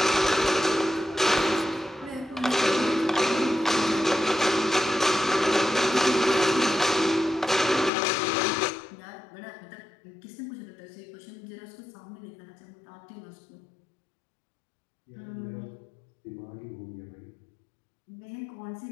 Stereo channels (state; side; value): drops out; right; at 7.9 s